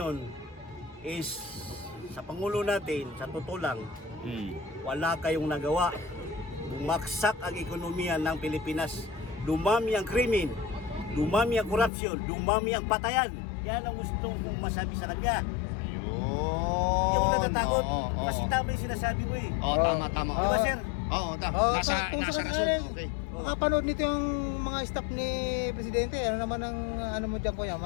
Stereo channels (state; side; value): drops out; right; at 11.9 s